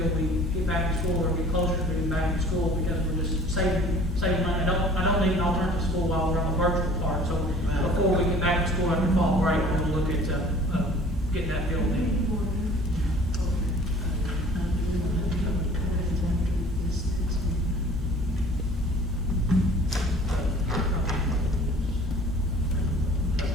we get back to school or get closer to getting back to school, because we're just saving money. I don't need an alternative school while we're on the virtual part. So before we get back to school after fall break, we'll look at getting that filled in.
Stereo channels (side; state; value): both; normal; correlation 0.49